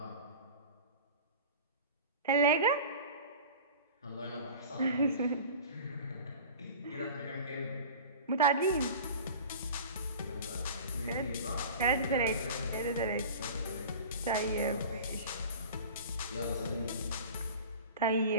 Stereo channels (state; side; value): inverted; both; correlation -0.38